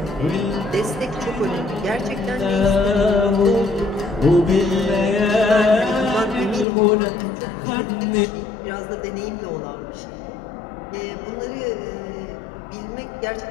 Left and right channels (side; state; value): right; drops out; at 6.7 s